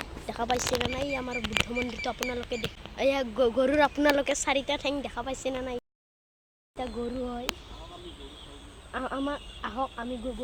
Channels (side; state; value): both; identical; correlation 1.00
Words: দেখা পাইছে না নাই? আমাৰ বুদ্ধ মন্দিৰটো আপোনালোকে এয়া গৰুৰ আপোনালোকে চাৰিটা ঠেং দেখা পাইছে না নাই? এতিয়া গৰু হয় আমাৰ, আহক আমি